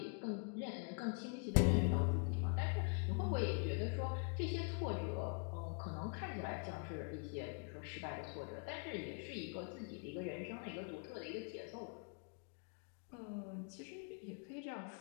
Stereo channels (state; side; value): quieter; right; 39.2 dB